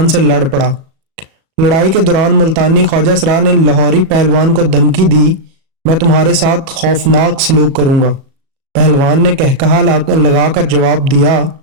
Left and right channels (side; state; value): left; late; 37 ms